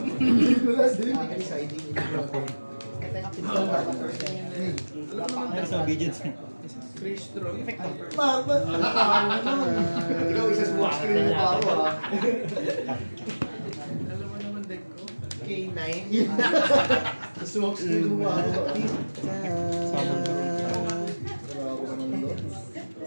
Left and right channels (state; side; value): inverted; both; correlation -1.00